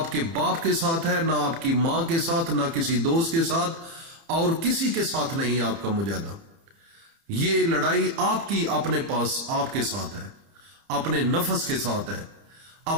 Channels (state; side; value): late; left; 30 ms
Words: बाप के साथ है, ना आपकी मां के साथ, ना किसी दोस्त के साथ, और किसी के साथ नहीं आपका मुजाहिदा। ये लड़ाई आपकी अपने पास, आपके साथ है, अपने नफ्स के साथ है,